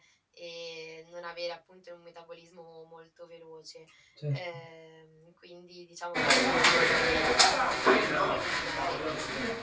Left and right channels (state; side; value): identical; both; correlation 1.00